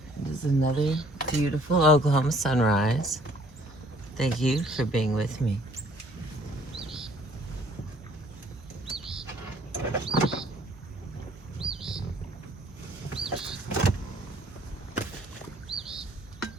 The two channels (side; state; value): both; normal; correlation 0.59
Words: It is another beautiful Oklahoma sunrise. Thank you for being with me.